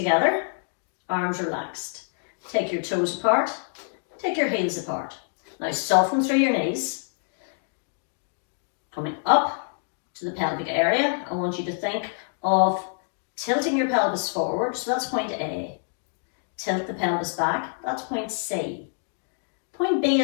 arms relaxed. Take your toes apart, take your heels apart. Now soften through your knees. Coming up to the pelvic area, I want you to think of tilting your pelvis forward, so that's point A. Tilt the pelvis back, that's point C. Point B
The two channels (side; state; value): right; silent; digital silence